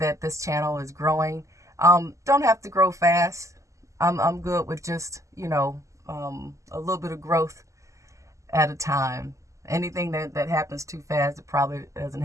this channel is growing. Don't have to grow fast. I'm good with just, a little bit of growth at a time. Anything that happens too fast, it probably doesn't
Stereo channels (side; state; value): left; late; 0.15 ms